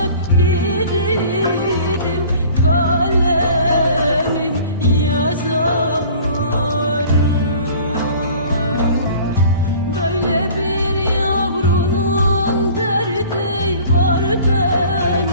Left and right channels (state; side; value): inverted; both; correlation -0.46